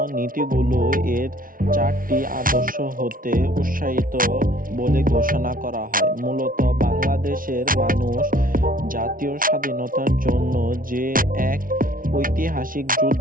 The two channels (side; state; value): left; late; 0.40 ms